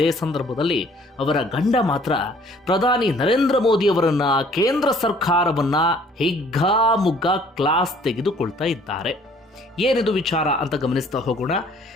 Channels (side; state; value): both; normal; correlation 0.57